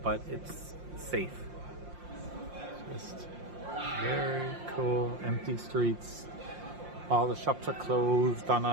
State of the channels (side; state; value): left; late; 5.7 ms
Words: but it's safe. Just very cool. Empty streets. All the shops are closed on